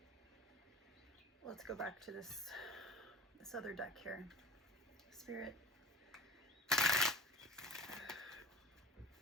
Let's go back to this other deck here. Spirit,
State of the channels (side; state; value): both; normal; correlation 0.41